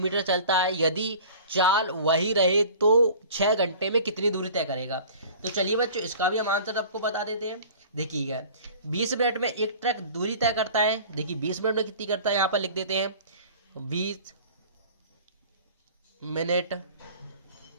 चलता है, यदि चाल वही रहे तो 6 घंटे में कितनी दूरी तय करेगा। तो चलिए बच्चों इसका भी हम आंसर आपको बता देते हैं। देखिएगा 20 मिनट में एक ट्रक दूरी तय करता है। देखिए 20 मिनट में कितनी करता है, यहाँ पर लिख देते हैं 20 मिनट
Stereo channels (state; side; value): inverted; both; correlation -0.43